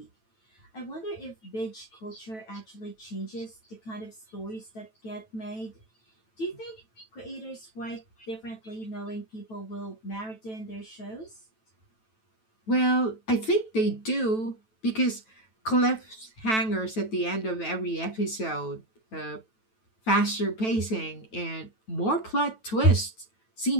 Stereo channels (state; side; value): late; right; 9.1 ms